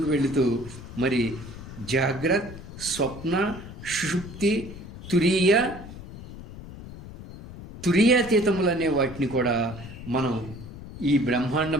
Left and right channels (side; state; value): left; noise; rumble, 13 dB below the sound